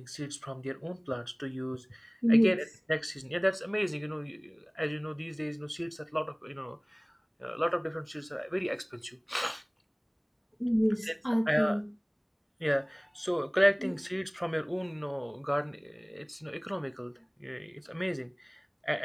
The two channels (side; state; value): both; identical; correlation 1.00